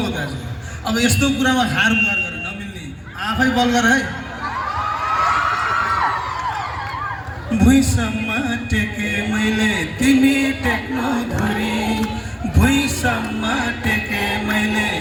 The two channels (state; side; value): identical; both; correlation 1.00